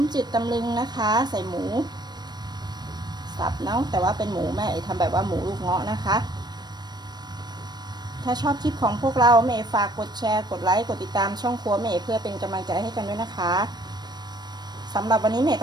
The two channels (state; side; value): late; left; 0.20 ms